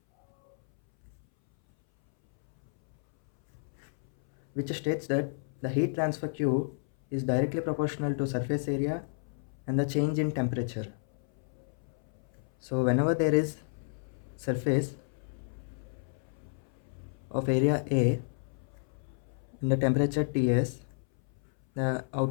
which states that the heat transfer Q is directly proportional to surface area and the change in temperature. So whenever there is surface of area A and the temperature Ts, the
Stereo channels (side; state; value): right; silent; 57 dB below the other